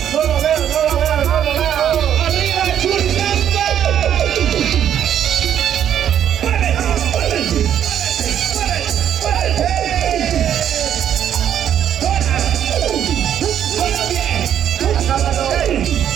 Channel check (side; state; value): left; quieter; 9.8 dB